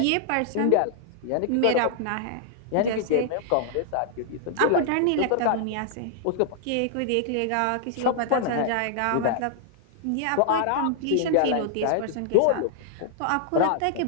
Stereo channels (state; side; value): different; both; correlation -0.01